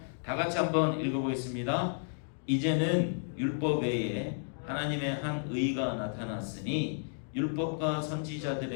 다 같이 한번 읽어보겠습니다. 이제는 율법 외에 하나님의 한 의가 나타났으니 율법과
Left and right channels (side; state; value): right; silent; digital silence